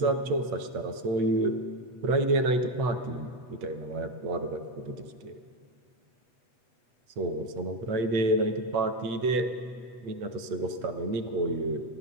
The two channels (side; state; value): left; late; 8.2 ms